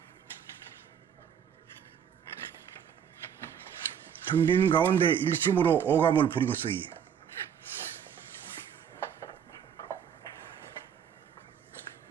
텅 빈 가운데 일심으로 오감을 부리고 쓰기.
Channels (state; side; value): quieter; left; 8.3 dB